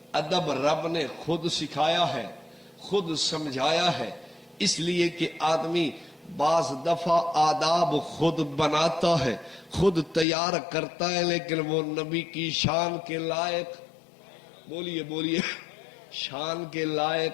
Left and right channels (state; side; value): drops out; right; at 10.2 s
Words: ادب رب نے خود سکھایا ہے، خود سمجھایا ہے، اس لیے کہ آدمی بعض دفعہ آداب خود بناتا ہے، خود تیار کرتا ہے، لیکن وہ نبی کی شان کے لائق، بولیے شان کے